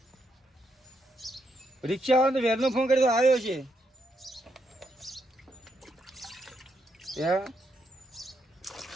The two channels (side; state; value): both; normal; correlation 0.79